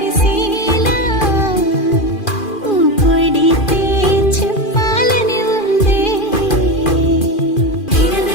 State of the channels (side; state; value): right; late; 2.4 ms